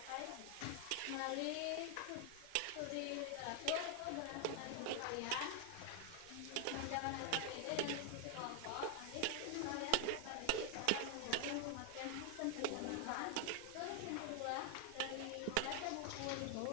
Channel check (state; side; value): different; both; correlation 0.00